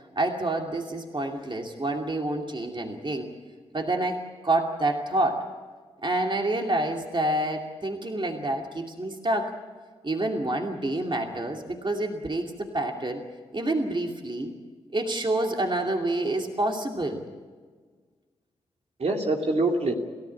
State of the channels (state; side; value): normal; both; correlation 0.64